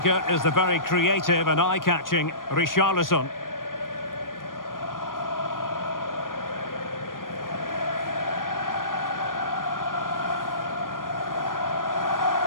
is the very creative and eye-catching Richarlison.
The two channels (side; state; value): right; late; 0.90 ms